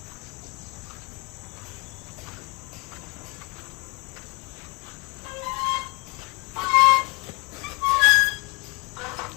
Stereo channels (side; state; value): right; quieter; 26.9 dB